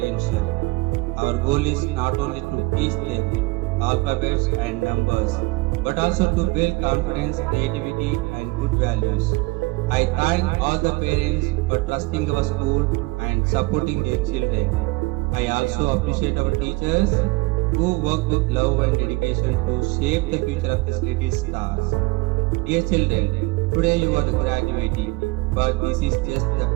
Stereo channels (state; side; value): quieter; left; 23.6 dB